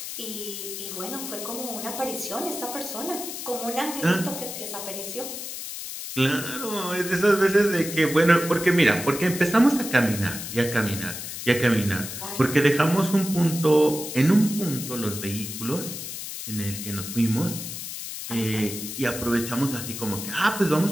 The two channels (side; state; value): left; noise; hiss, 8 dB below the sound